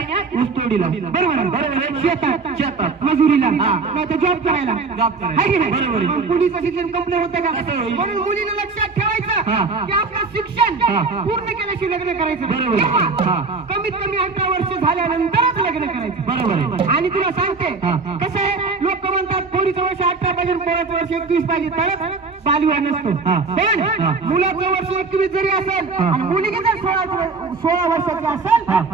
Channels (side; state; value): left; quieter; 4.2 dB